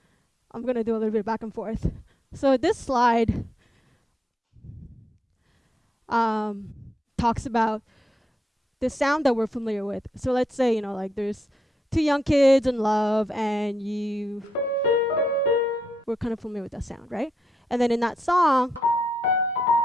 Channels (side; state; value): both; normal; correlation 0.81